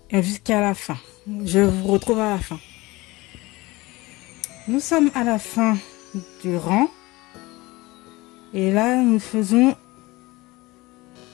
jusqu'à la fin. Je vous retrouve à la fin. Nous sommes à la fin du rang. Et là, nous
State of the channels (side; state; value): right; quieter; 21.4 dB